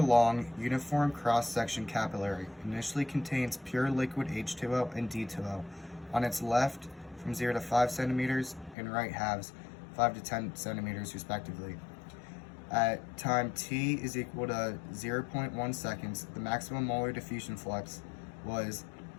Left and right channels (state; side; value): drops out; right; at 8.8 s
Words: long uniform cross-section capillary initially contains pure liquid H2O and D2O on its left from 0 to 5 centimeters and right halves 5 to 10 centimeters respectively. At time t is equal to 0.1 seconds, the maximum molar diffusion flux was